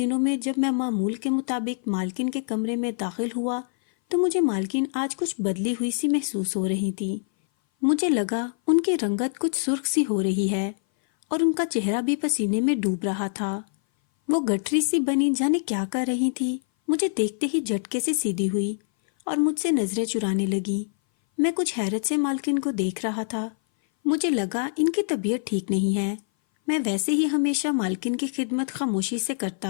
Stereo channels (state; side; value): silent; right; 58 dB below the other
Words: میں جب میں معمول کے مطابق مالکن کے کمرے میں داخل ہوا تو مجھے مالکن آج کچھ بدلی ہوئی سی محسوس ہو رہی تھی۔ مجھے لگا ان کی رنگت کچھ سرخ سی ہو رہی ہے اور ان کا چہرہ بھی پسینے میں ڈوب رہا تھا۔ وہ گٹھری سی بنی جانے کیا کر رہی تھی، مجھے دیکھتے ہی جھٹکے سے سیدھی ہوئی اور مجھ سے نظریں چرانے لگی۔ میں کچھ حیرت سے مالکن کو دیکھ رہا تھا۔ مجھے لگا ان کی طبیعت ٹھیک نہیں ہے۔ میں ویسے ہی ہمیشہ مالکن کی خدمت خاموشی سے